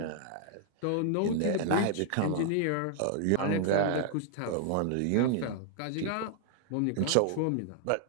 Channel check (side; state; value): both; different; correlation 0.00